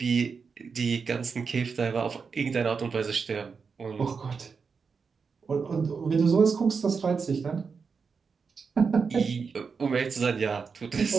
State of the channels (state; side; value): quieter; left; 5.4 dB